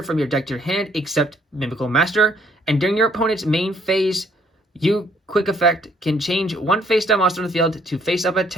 from your deck to your hand, except Mimighoul Master. And during your opponent's main phase, you quick effect can change one face-down monster on the field to face-up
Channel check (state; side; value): normal; both; correlation 0.66